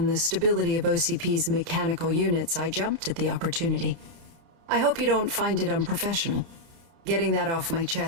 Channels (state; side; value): late; left; 30 ms